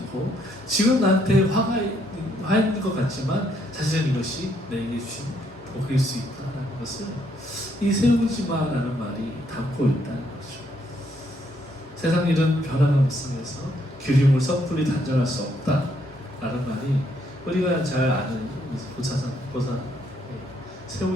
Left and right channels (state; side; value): normal; both; correlation 0.72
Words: 지금 나한테 화가 있는 것 같지만 사실은 이것이 내게 주신 복일 수 있다는 것을 이 세우지마라는 말이 담고 있다는 거죠. 세상 일은 변화가 무쌍해서 기름을 섣불리 단정할 수 없다라는 말이 우리가 잘 아는 보사